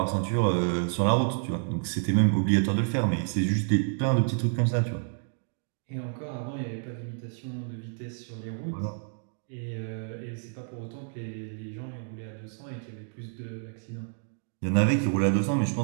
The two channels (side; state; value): left; silent; digital silence